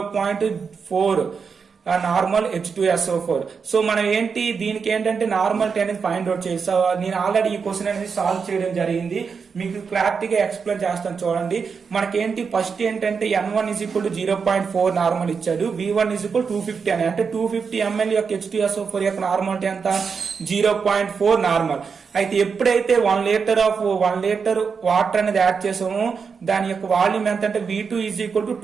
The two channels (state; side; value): quieter; left; 5.7 dB